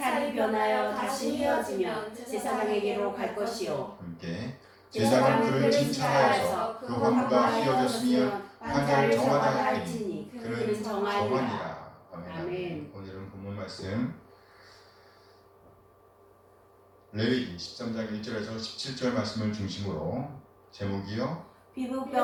변하여 다시 휘어지면 제사장에게로 갈 것이요 함께 제사장은 그를 진찰하여서 그 환부가 휘어졌으면 환자를 정하다 할지니 그는 정하니라. 아멘. 아멘. 오늘은 본문 말씀 레위기 13장 1절에서 17절 말씀을 중심으로 제목이요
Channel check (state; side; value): identical; both; correlation 1.00